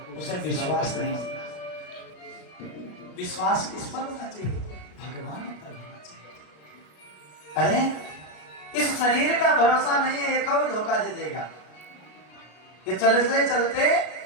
उसे विश्वास नहीं। विश्वास किस पर होना चाहिए? भगवान पर होना चाहिए। अरे इस शरीर का भरोसा नहीं है ये कब धोखा दे देगा, ये चलते चलते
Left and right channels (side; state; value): right; late; 33 ms